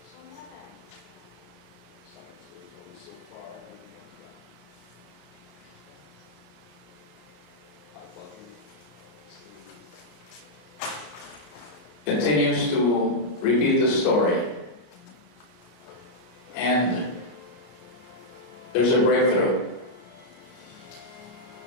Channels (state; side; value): late; right; 34 ms